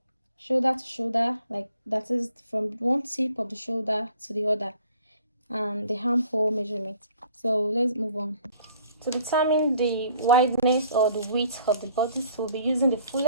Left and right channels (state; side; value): inverted; both; correlation -0.57